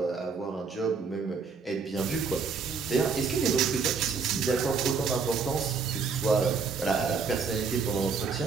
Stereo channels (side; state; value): left; quieter; 5.1 dB